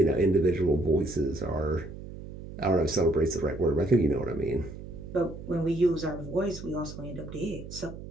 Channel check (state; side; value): noise; right; hum, 12 dB below the sound